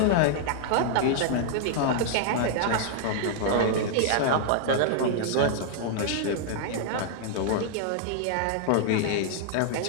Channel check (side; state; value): both; different; correlation -0.01